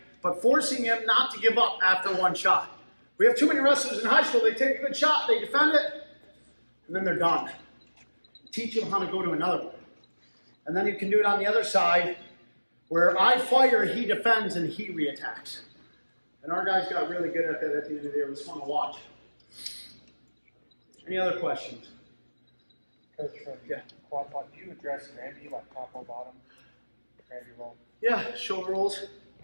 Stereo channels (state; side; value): inverted; both; correlation -1.00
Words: but forcing him not to give up after one shot. We have too many wrestlers in high school, they take a good shot, they defend it, and then they're done. Teach them how to go to another one. And then you can do it on the other side, where I fire, he defends, and he reattacks. And our guys got really good at that at the end of the day. It was fun to watch. Any other questions? Coach, Yeah. quad pod, do you address Granby like top or bottom? Granby roll. Yeah, shoulder rolls.